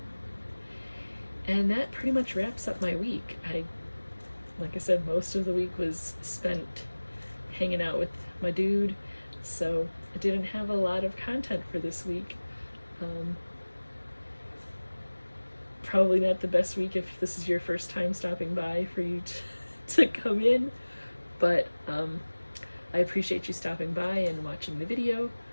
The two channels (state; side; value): inverted; both; correlation -1.00